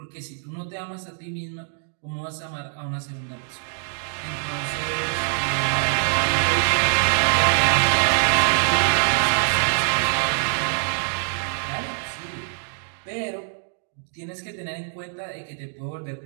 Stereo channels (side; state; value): left; silent; digital silence